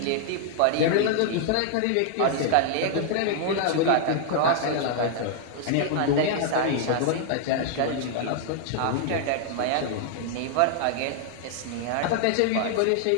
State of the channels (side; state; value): both; different; correlation 0.00